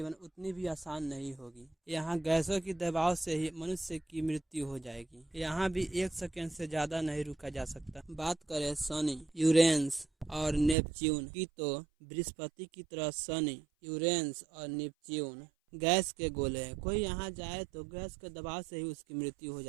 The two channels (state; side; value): drops out; left; at 10.8 s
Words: उतनी भी आसान नहीं होगी। यहाँ गैसों की दबाव से ही मनुष्य की मृत्यु हो जाएगी। यहाँ भी 1 सेकेंड से ज्यादा नहीं रुका जा सकता। बात करें शनि, यूरेनस और नेपच्यून की तो बृहस्पति की तरह शनि, यूरेनस और नेपच्यून गैस के गोले हैं। कोई यहाँ जाए तो गैस के दबाव से ही उसकी मृत्यु हो